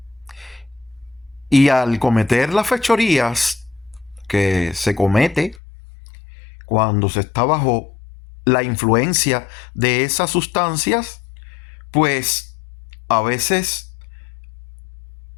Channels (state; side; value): drops out; right; at 5.6 s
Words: Y al cometer las fechorías que se comete cuando se está bajo la influencia de esas sustancias, pues a veces